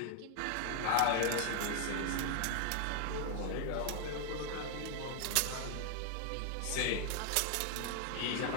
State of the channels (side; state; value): both; different; correlation 0.00